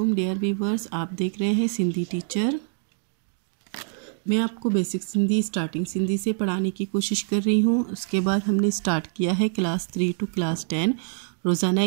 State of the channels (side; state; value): left; silent; digital silence